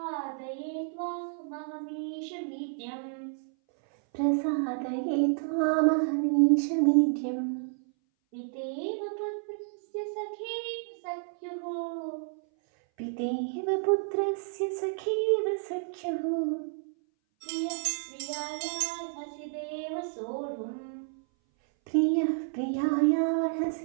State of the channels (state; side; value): silent; left; 57 dB below the other